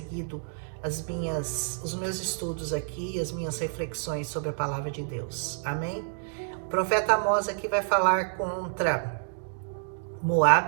os meus estudos aqui, as minhas reflexões sobre a palavra de Deus. Amém? O profeta Amós aqui vai falar contra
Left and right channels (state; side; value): silent; left; digital silence